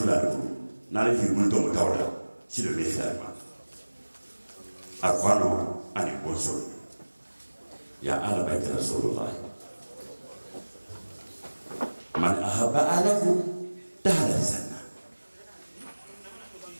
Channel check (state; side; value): inverted; both; correlation -1.00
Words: na fi multo tawala silo de fa أخوانه أن يقول يا أهل بيت رسول الله من أحب أهله دخل الجنة